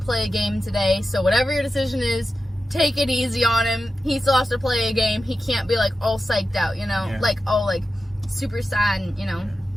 a game today, so whatever your decision is, take it easy on him. He still has to play a game. He can't be like all psyched out, you know? Yeah. Like all like super sad, and, you know? Yeah.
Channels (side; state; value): both; normal; correlation 0.92